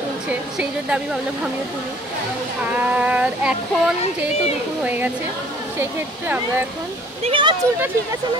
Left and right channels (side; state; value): both; normal; correlation 0.53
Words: তুলছে, সেই জন্য আমি ভাবলাম আমিও তুলি। আর এখন যেহেতু দুপুর হয়ে গেছে, সেই ক্ষেত্রে আমরা এখন চুলটা ঠিক আছে না,